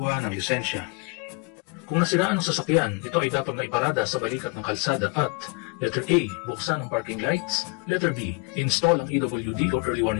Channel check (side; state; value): right; quieter; 29.1 dB